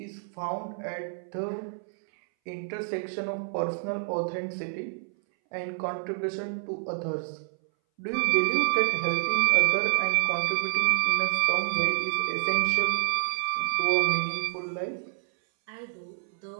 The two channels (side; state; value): left; silent; 59 dB below the other